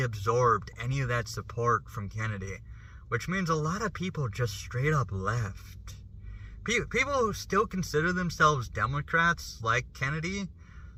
any of that support from Kennedy, which means a lot of people just straight up left. People who still consider themselves Democrats, like Kennedy,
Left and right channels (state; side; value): identical; both; correlation 1.00